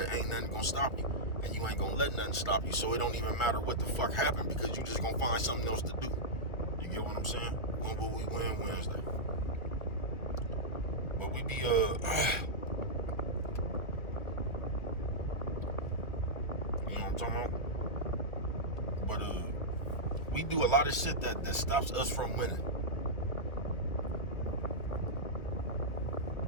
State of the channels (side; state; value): right; late; 1.7 ms